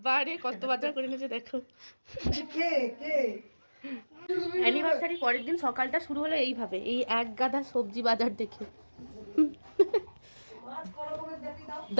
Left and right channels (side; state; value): both; inverted; correlation -1.00